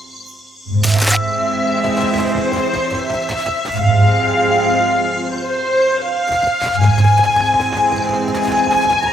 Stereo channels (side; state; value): both; normal; correlation 0.79